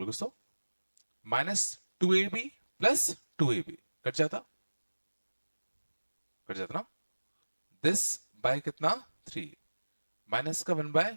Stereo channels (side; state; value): both; inverted; correlation -1.00